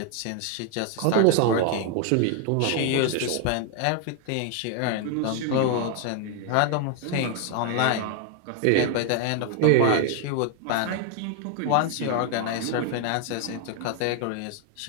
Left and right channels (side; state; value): both; different; correlation 0.00